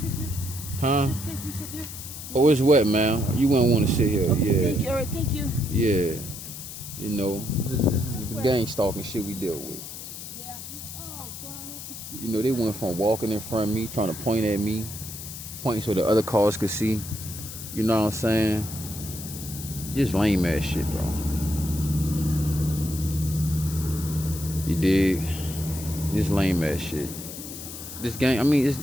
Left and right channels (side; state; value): left; noise; hiss, 11 dB below the sound